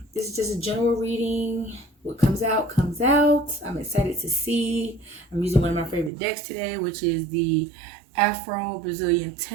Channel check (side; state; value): left; drops out; at 6.1 s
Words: This is just a general reading. What comes out comes out. I'm excited to see. I'm using one of my favorite decks today, which is the Afro Brazilian